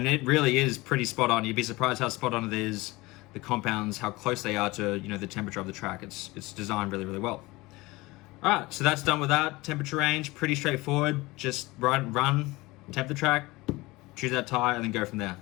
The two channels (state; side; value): quieter; right; 21.5 dB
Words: it really is pretty spot on. You'd be surprised how spot on it is, the compounds, how close they are to, you know, the temperature of the track. It's designed really, really well. All right, so that's done with that. Temperature range, pretty straightforward. Just run, temp the track, choose that tire, and then go from there.